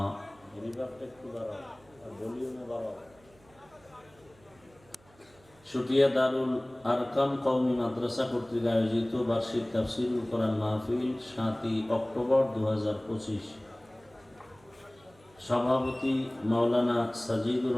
শুটিয়া দারুল আরকাম কওমি মাদ্রাসা কর্তৃক আয়োজিত বার্ষিক তাফসীরুল কোরআন মাহফিল 7ই অক্টোবর 2025। সভাপতি মাওলানা সাজিদুর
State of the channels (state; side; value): noise; right; hum, 29 dB below the sound